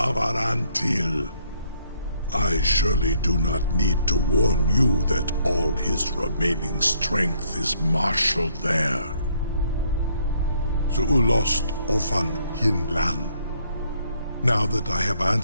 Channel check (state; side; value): inverted; both; correlation -0.68